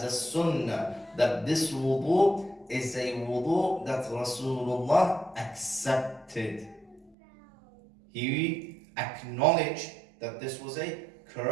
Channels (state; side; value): drops out; left; at 7.2 s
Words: a sunnah, that this wudu is a wudu that Rasulullah accepted. He acknowledged that this was a